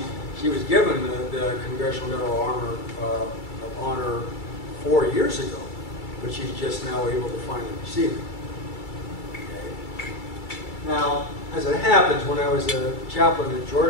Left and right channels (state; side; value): late; right; 2.3 ms